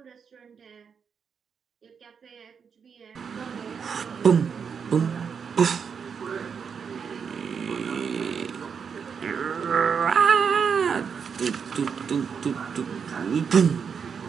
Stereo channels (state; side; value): quieter; left; 6.5 dB